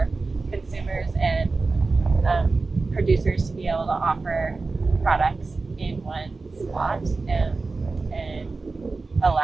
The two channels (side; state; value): left; quieter; 3.8 dB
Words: consumers and producers to be able to offer products in one spot, and